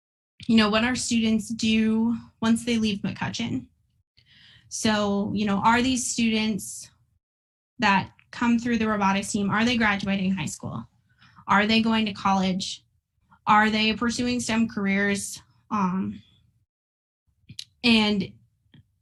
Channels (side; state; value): both; identical; correlation 1.00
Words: what our students do once they leave McCutcheon. So, are these students that come through the robotics team, are they graduating high school? Are they going to college? Are they pursuing STEM careers? And